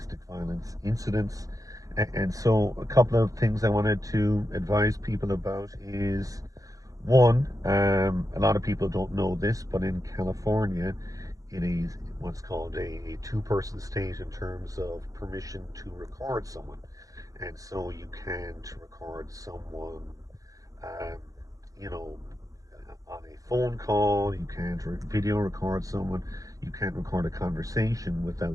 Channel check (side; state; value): left; late; 0.17 ms